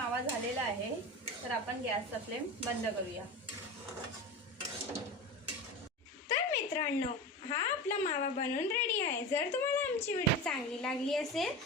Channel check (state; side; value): normal; both; correlation 0.27